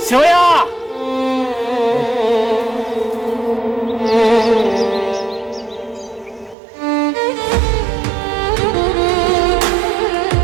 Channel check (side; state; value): left; drops out; at 6.6 s